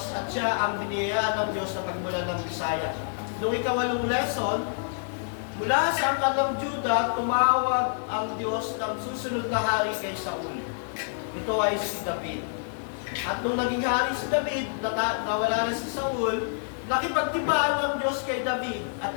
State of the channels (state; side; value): silent; right; digital silence